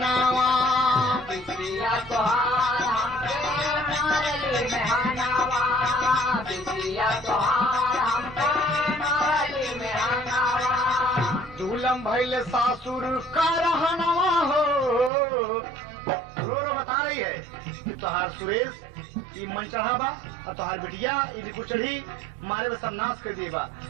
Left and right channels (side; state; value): left; drops out; at 15.1 s